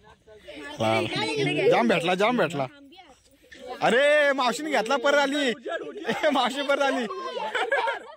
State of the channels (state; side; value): identical; both; correlation 1.00